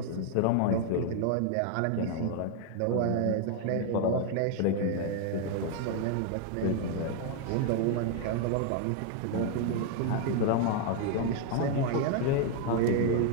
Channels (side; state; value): both; different; correlation 0.00